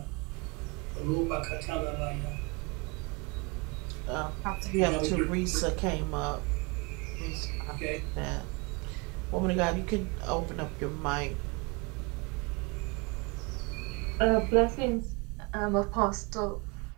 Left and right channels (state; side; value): quieter; left; 28.6 dB